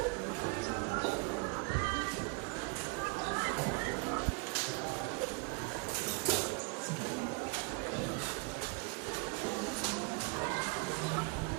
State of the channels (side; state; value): left; quieter; 30.9 dB